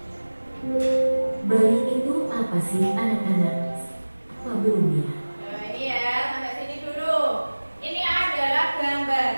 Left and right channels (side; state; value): both; inverted; correlation -1.00